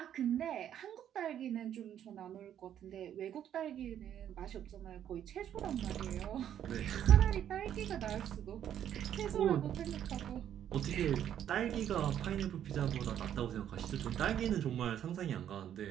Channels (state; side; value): quieter; left; 10.1 dB